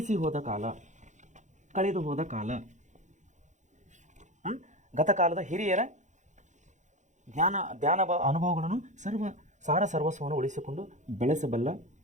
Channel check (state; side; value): late; left; 0.35 ms